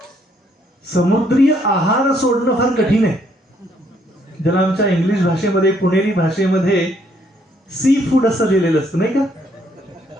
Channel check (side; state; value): both; normal; correlation 0.69